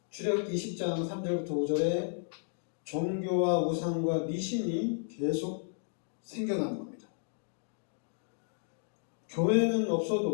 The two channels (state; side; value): silent; right; digital silence